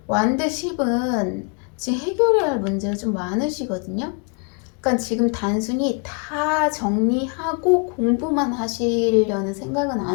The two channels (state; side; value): quieter; right; 35.7 dB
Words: 완드 10은 지금 해결해야 할 문제가 좀 많으시거든요. 그러니까 지금 단순히 다 정리하고 공부만 하시려는 생각은